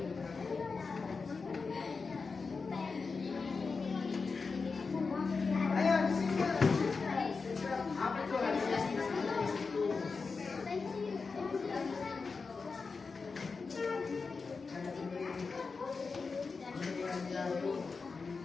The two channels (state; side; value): quieter; right; 4.6 dB